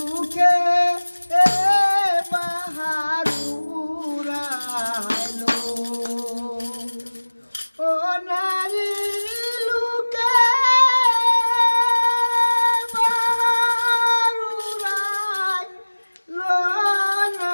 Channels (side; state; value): both; inverted; correlation -1.00